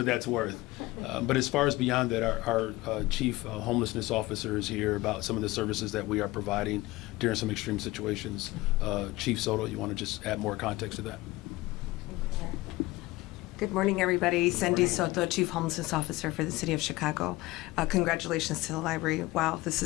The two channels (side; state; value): right; quieter; 19.7 dB